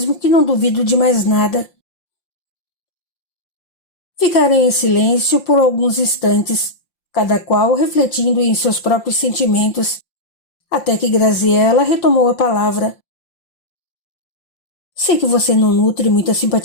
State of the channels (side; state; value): right; late; 5.7 ms